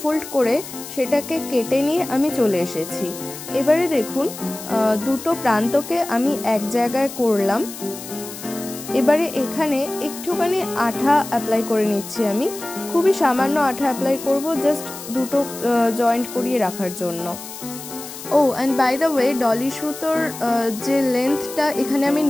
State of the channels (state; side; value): noise; left; hiss, 12 dB below the sound